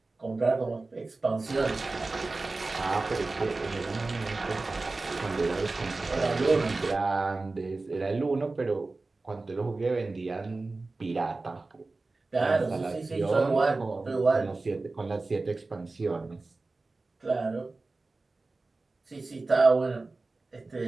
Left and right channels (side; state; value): left; quieter; 3.4 dB